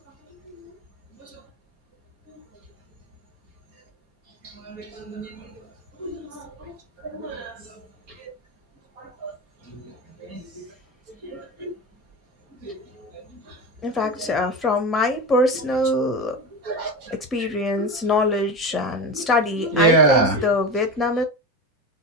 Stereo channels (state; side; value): normal; both; correlation 0.24